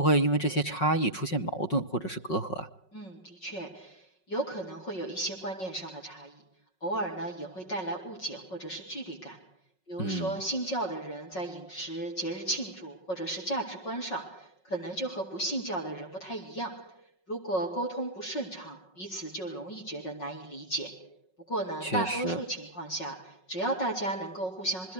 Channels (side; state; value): right; late; 5.4 ms